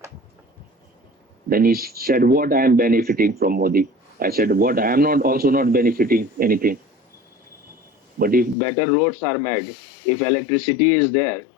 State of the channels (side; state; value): right; drops out; at 8.6 s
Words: Then he said, what I am benefiting from Modi? I said, what I am not also not benefiting anything. But if better roads are made, if electricity is there,